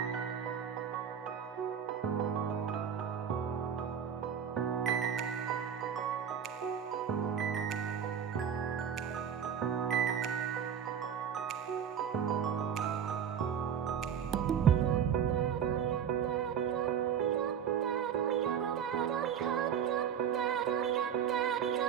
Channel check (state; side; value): quieter; left; 8.1 dB